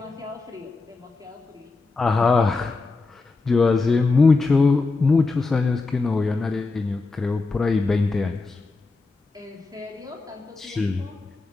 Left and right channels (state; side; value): quieter; right; 3.8 dB